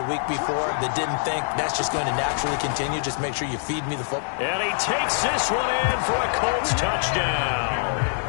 week before that didn't think that's just going to naturally continue? Just make sure you feed me the football. And he takes this one in for a Colts touchdown.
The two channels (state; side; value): silent; right; digital silence